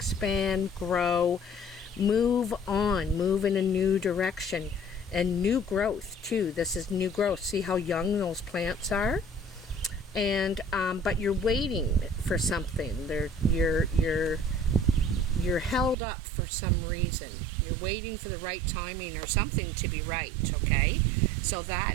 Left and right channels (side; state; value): left; drops out; at 16.0 s